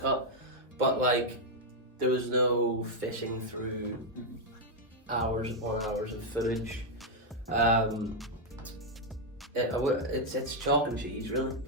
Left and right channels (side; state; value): both; normal; correlation 0.00